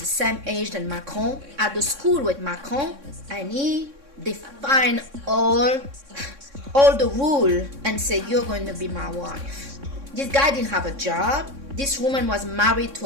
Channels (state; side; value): late; left; 3.6 ms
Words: same age than Macron, at the school with Macron, and he defined all the rule and say, you're going to be my wife. This guy didn't have a job. This woman was married